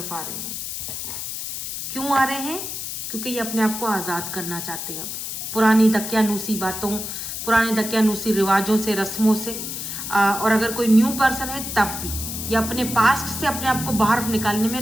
आ रहे हैं। क्यों आ रहे हैं, क्योंकि ये अपने आप को आज़ाद करना चाहते हैं अब पुरानी दकियानूसी बातों, पुराने दकियानूसी रिवाजों से, रस्मों से। और अगर कोई न्यू पर्सन है तब भी ये अपने पास्ट से अपने आप को बाहर निकालने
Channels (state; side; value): noise; left; hiss, 6 dB below the sound